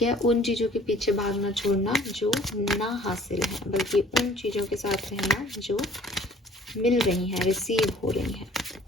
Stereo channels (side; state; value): both; normal; correlation 0.53